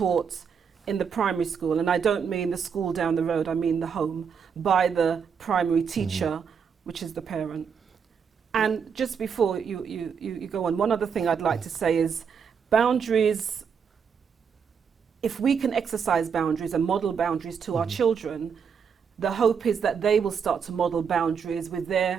in the primary school, and I don't mean the school down the road, I mean the home, by the primary teacher, which is the parent. And just before you go on, one other thing I'd like to say is boundaries, if we can exercise boundaries and model boundaries to our children, the hope is that they will start to model boundaries with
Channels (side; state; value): left; quieter; 6.6 dB